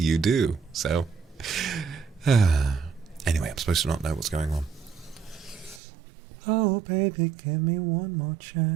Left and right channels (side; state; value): left; drops out; at 5.8 s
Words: do, so... Anyway, I'm supposed to not know what's going on. Oh, baby, give me one more